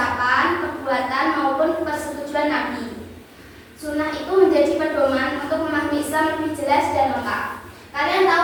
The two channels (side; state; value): both; identical; correlation 1.00